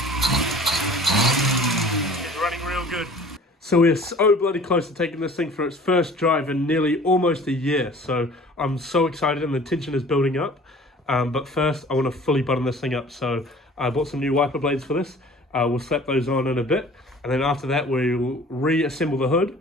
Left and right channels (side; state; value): both; normal; correlation 0.47